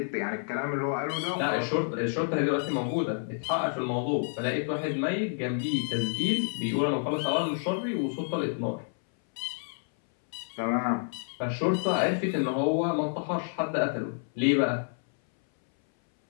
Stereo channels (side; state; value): right; silent; 59 dB below the other